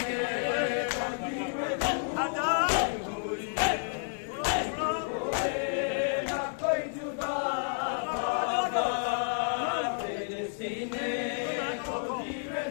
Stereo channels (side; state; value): right; silent; 57 dB below the other